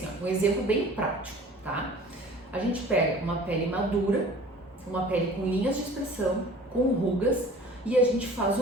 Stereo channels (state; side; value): normal; both; correlation 0.46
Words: um exemplo bem prático, tá? A gente pega uma pele madura, uma pele com linhas de expressão, com rugas, e a gente faz